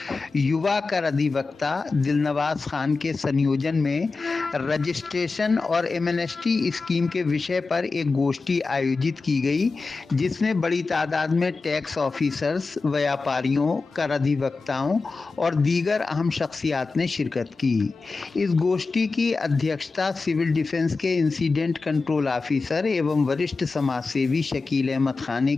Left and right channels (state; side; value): quieter; right; 4.0 dB